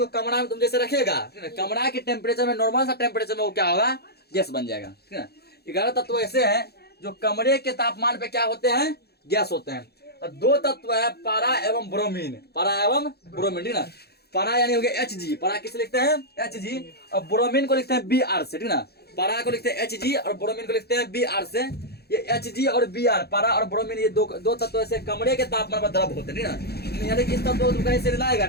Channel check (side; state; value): right; late; 0.47 ms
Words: कमरा में तुम जैसे रखेगा, कमरा के टेम्परेचर में, नॉर्मल सा टेम्परेचर में वो क्या होगा, गैस बन जाएगा, ठीक है। 11 तत्व ऐसे हैं जो कमरे के तापमान पे क्या होते हैं, गैस होते हैं। और दो तत्व है पारा एवं ब्रोमीन, ठीक ना। पारा यानी हो गया Hg, पारा किसे लिखते हैं, Hg, और ब्रोमीन को लिखते हैं Br से, ठीक ना। पारा को लिखते हैं Hg और ब्रोमीन को लिखते हैं Br से। ये Hg और Br, पारा और ब्रोमीन, ये दो तत्व ऐसे कमरे के तापमान पर द्रव होते हैं, ठीक ना। यानी कि इस तत्व को तुम कहीं से लाएगा,